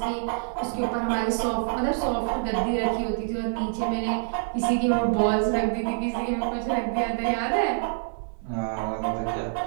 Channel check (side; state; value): left; silent; 61 dB below the other